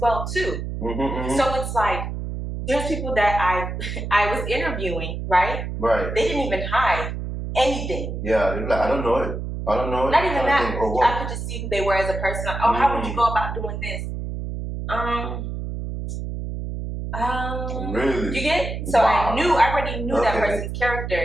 well too. So it's like there's people that I was interviewing, right? Right. They didn't even hide anything. Yeah, they're like, I don't know it. Not even that. I could just see who they were as a person. Like, oh, how would you go about doing this? Really? You get? So Wow. I already knew that person's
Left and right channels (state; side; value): noise; right; hum, 5 dB below the sound